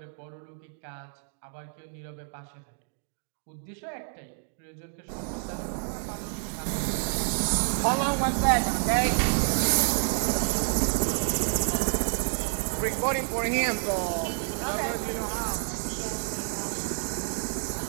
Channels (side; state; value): left; silent; 59 dB below the other